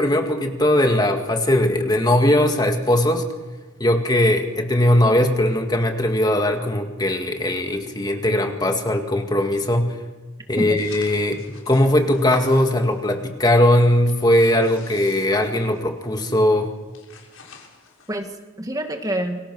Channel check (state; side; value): normal; both; correlation 0.68